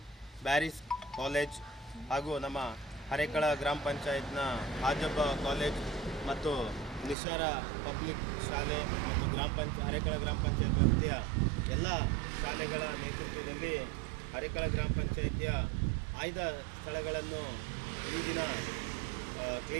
Bearys college ಹಾಗೂ ನಮ್ಮ ಹರೇಕಳ ಗ್ರಾಮ ಪಂಚಾಯತ್ನ ಹಾಜಬ್ಬ ಕಾಲೇಜ್ ಮತ್ತು ನಿಶಾರ ಪಬ್ಲಿಕ್ ಶಾಲೆ ಮತ್ತು ಹರೇಕಳ ಗ್ರಾಮ ಪಂಚಾಯತ್ ವ್ಯಾಪ್ತಿಯ ಎಲ್ಲ ಶಾಲೆಗಳ ನೇತೃತ್ವದಲ್ಲಿ ಹರೇಕಳ ಗ್ರಾಮ ಪಂಚಾಯತಿಯ ಆಯ್ದ ಸ್ಥಳಗಳನ್ನು ಈ ದಿನ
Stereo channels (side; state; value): left; drops out; at 7.2 s